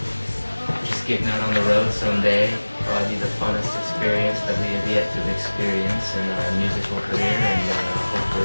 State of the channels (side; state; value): both; inverted; correlation -1.00